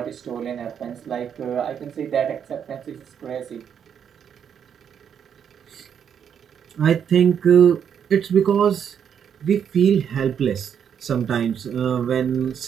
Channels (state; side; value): quieter; left; 8.1 dB